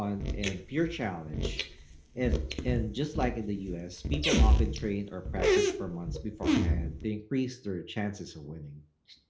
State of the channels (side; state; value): both; identical; correlation 1.00